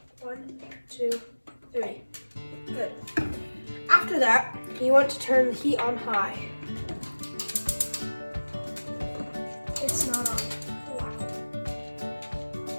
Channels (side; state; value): both; inverted; correlation -1.00